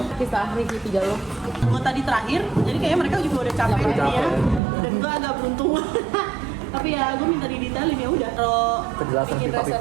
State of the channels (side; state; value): left; drops out; at 4.6 s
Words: kisah Ricky 3 lo. Gue tadi terakhir, jadi kayaknya mereka juga udah capek nih ya. Dan gue agak beruntung. Tapi ya gue minta didetailin ya udah. Kalau Kejelasan bikin pipa-pipa.